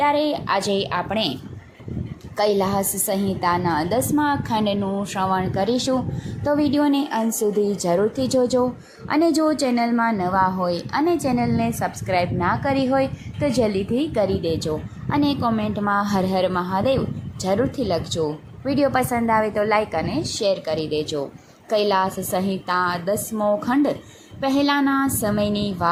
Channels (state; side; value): identical; both; correlation 1.00